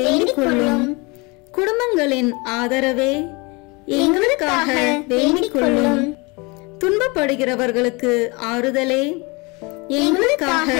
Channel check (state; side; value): quieter; right; 27.4 dB